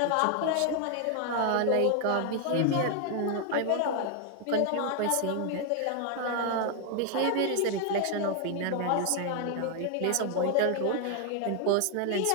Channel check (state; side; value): different; both; correlation 0.01